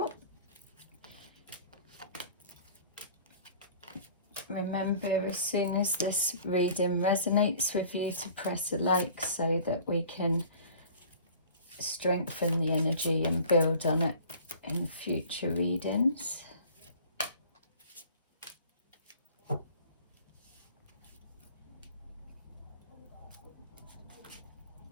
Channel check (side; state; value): both; inverted; correlation -0.47